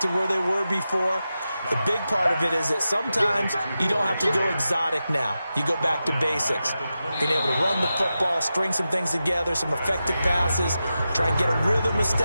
to where they were before. The big part of it is that sometimes you don't have to go exotic now. You go back to basics. Being able to run the football, string some things together, some effective passes, try and get a rhythm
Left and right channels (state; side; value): inverted; both; correlation -0.91